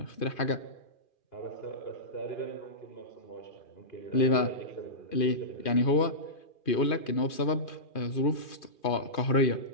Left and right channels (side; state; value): right; late; 2.4 ms